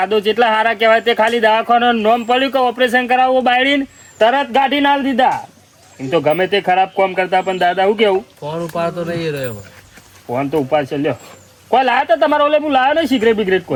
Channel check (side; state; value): both; identical; correlation 1.00